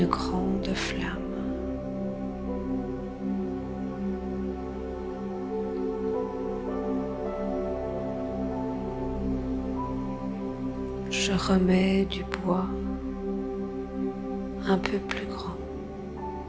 grande flamme. Je remets du bois un peu plus grand,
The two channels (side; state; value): both; identical; correlation 1.00